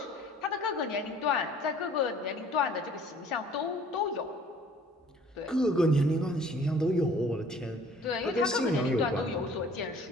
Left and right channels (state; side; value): normal; both; correlation 0.53